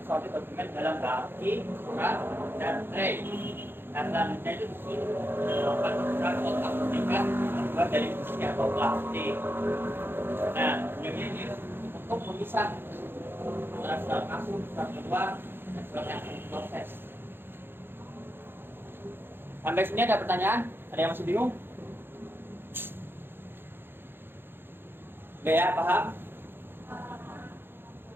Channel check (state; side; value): late; left; 0.10 ms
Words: dokumen dalam baki, surat, dan tray. Dan selanjutnya itu melakukan surat kotak tingkat terbuat dari besi atau plastik. Nah, ini untuk memisah antara surat masuk, surat keluar, dan surat yang diproses. Sampai sini ada pertanyaan? Ada yang masih bingung? Oke ya, paham?